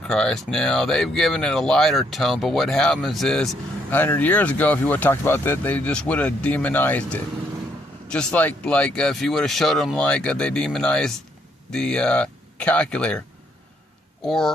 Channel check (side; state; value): both; normal; correlation 0.71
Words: Now, they've given it a lighter tone, but what happens is 100 years ago, if you would have talked about that, they just would have demonized it. Just like if you would have showed them they demonized the calculator.